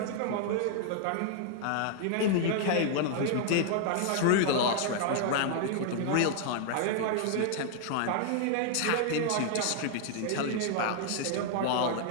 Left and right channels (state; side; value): different; both; correlation 0.00